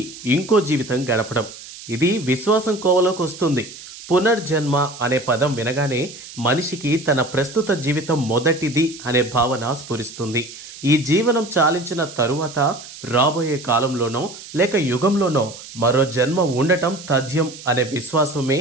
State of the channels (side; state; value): right; noise; hiss, 15 dB below the sound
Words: ఇంకో జీవితం గడపడం. ఇది విశ్వాసం కోవలోకి వస్తుంది. పునర్జన్మ అనే పదం వినగానే మనిషికి తన ప్రస్తుత జీవితం మొదటిది అనే భావన స్ఫురిస్తుంది. ఈ జీవనం చాలించిన తరువాత రాబోయే కాలంలోనో లేక యుగంలోనో మరో జన్మ ఉండటం తథ్యం అనే విశ్వాసమే